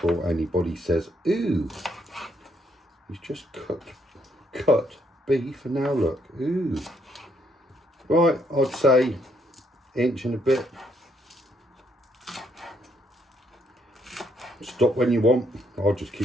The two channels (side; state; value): both; normal; correlation 0.72